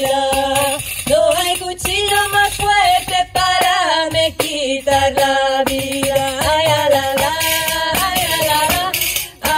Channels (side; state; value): both; identical; correlation 1.00